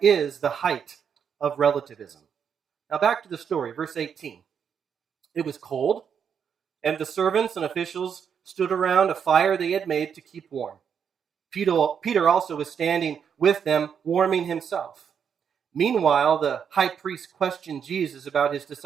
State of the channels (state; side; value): quieter; left; 7.4 dB